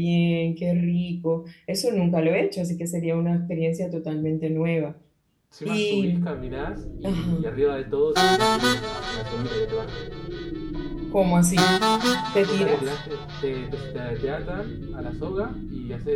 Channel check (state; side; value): identical; both; correlation 1.00